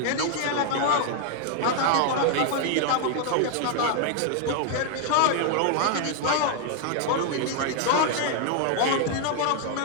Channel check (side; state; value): both; different; correlation 0.00